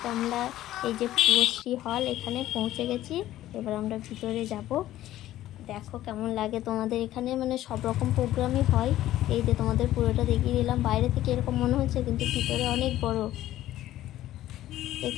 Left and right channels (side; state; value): right; quieter; 14.0 dB